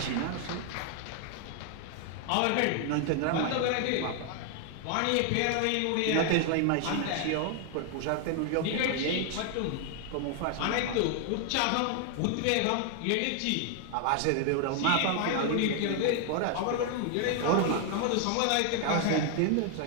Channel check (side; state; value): both; different; correlation 0.00